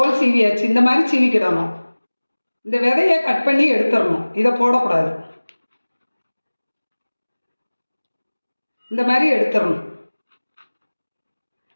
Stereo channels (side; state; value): both; inverted; correlation -1.00